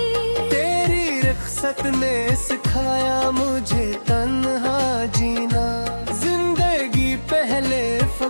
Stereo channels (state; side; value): inverted; both; correlation -1.00